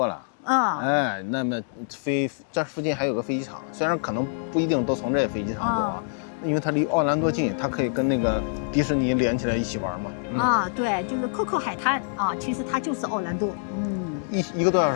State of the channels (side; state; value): right; silent; digital silence